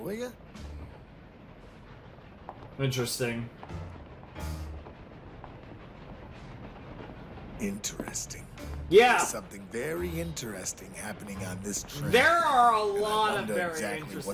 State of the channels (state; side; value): identical; both; correlation 1.00